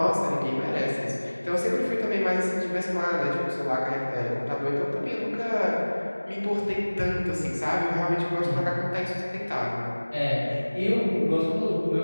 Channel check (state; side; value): inverted; both; correlation -1.00